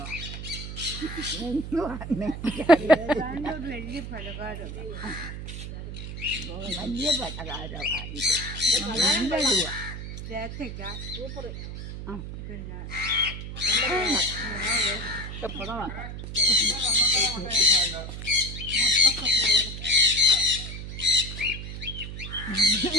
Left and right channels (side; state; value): right; noise; hum, 8 dB below the sound